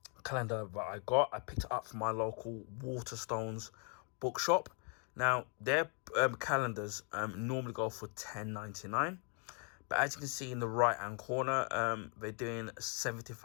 calendar that I picked it up from my local Waterstones bookshop. Now, their calendars normally go for $10.99, but as you can see in the right hand corner, they're doing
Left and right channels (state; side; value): quieter; right; 38.3 dB